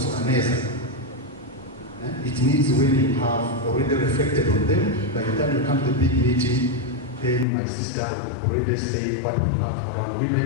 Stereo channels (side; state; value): right; drops out; at 7.5 s